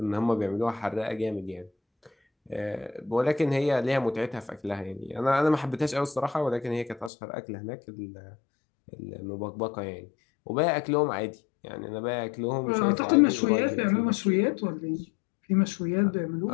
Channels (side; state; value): right; drops out; at 7.1 s